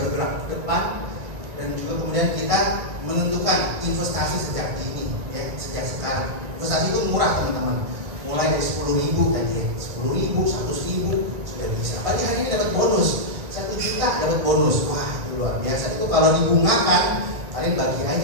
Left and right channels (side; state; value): left; late; 1.9 ms